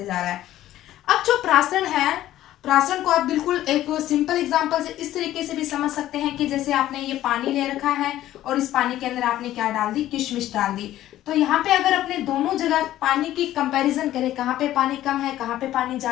जा रहा है। अब जो परासरण है, परासरण को आप बिल्कुल एक सिंपल एग्जांपल से इस तरीके से भी समझ सकते हैं कि जैसे आपने ये पानी ले रखा है और इस पानी के अंदर आपने क्या डाल दी? किशमिश डाल दी। तो यहाँ पे अगर अपने दोनों जगह पानी की कंपैरिजन करें, कहाँ पे पानी कम है, कहाँ पे पानी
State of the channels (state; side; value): quieter; right; 13.7 dB